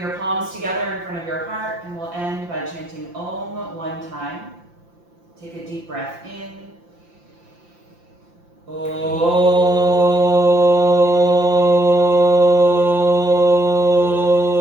your palms together in front of your heart, and we'll end by chanting Om one time. Take a deep breath in. Om.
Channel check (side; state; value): left; late; 5.8 ms